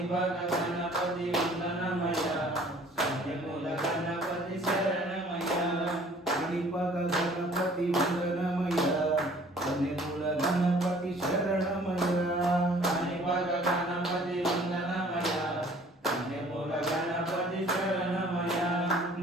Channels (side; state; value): both; normal; correlation 0.54